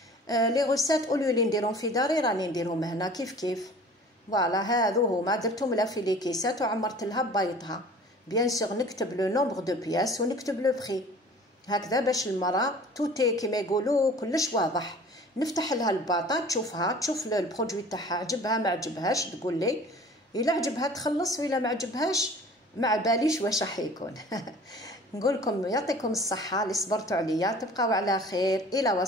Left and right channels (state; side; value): normal; both; correlation 0.46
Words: لي غوسات اولو لي نديرهم في داري راني نديرهم هنا كيف كيف. فوالا هذو هما درتهم لها في لي كيسات وعمرت لها بيضها. بيان سور نكتب لو نومبر دو بياس ونكتب لو بري هكذا باش المراه توتي كيما يقولوا كلش واضح. نفتح لها الباطا تشوفها تشوف البرودوي تاعها عجبها ما عجبهاش تقول لي. الا عجبها تخلص والا ما عجبهاش ما باليش واش راح يكون. نقول لكم يعطيكم الصحه اللي صبرتوا عليا. تبقاو على خير الى